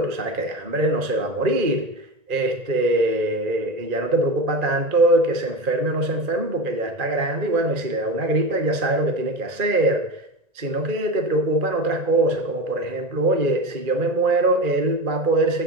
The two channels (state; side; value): late; left; 1.9 ms